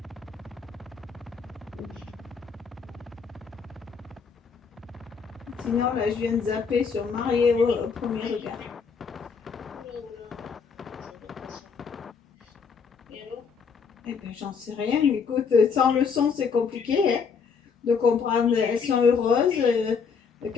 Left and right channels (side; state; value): right; quieter; 5.8 dB